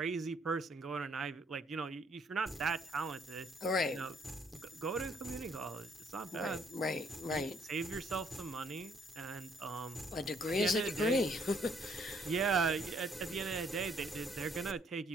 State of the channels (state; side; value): normal; both; correlation 0.67